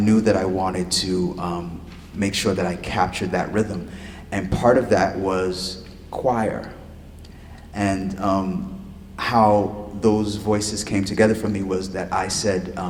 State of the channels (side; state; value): both; identical; correlation 1.00